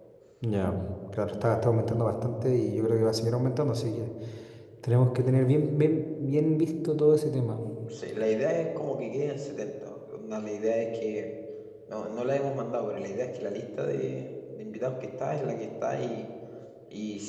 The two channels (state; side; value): identical; both; correlation 1.00